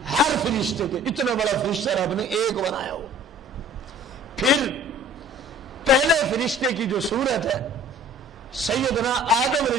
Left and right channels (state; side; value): normal; both; correlation 0.49